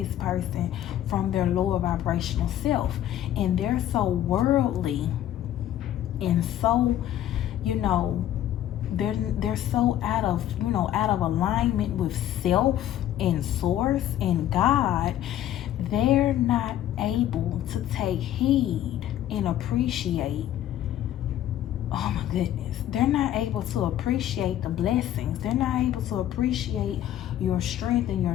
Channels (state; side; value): quieter; right; 12.0 dB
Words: person from their lower vibrational self. And they're so worldly and so, you know, they're so out of alignment with self and source and God, they're not able to take heed and appreciate. Oh my goodness. They're not able to appreciate the blessings. They're not able to appreciate your strength and your